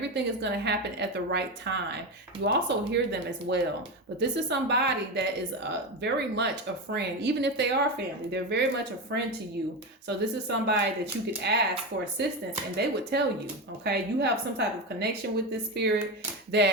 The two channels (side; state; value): both; normal; correlation 0.17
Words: is going to happen at the right time. You also hear them as well. But this is somebody that is very much a friend. Even if they are family, they're very much a friend to you. So this is somebody that you could ask for assistance and they would tell you, okay? You have some type of connection with this spirit